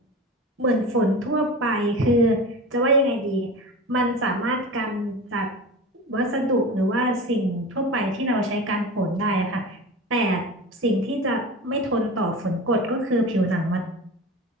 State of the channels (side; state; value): both; normal; correlation 0.31